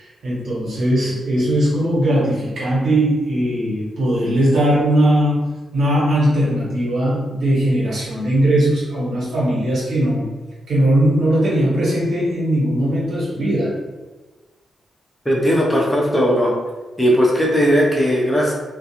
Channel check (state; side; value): normal; both; correlation 0.82